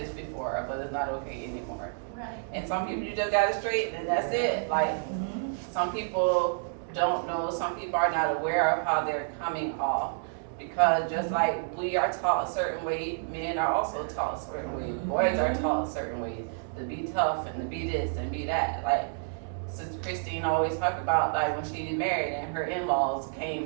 before, but it's not okay anymore. Right. And some people you just gotta straighten, and that's it. Like Mhm. some people don't know. Some people are not aware of how they're coming off. Because just like we are taught a certain way, men are also taught a certain way. Boys are taught a certain way to be tough and to be this and be that. Like Sister Christine always talked about, like when she married and her in-laws came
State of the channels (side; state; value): left; silent; digital silence